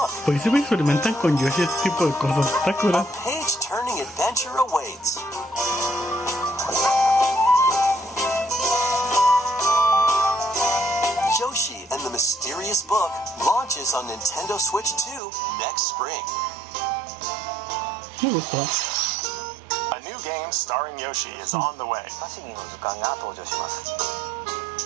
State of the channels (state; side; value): drops out; left; at 15.2 s